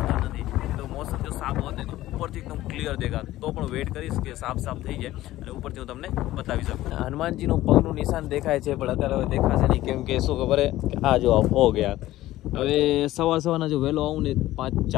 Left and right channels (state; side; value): quieter; right; 15.5 dB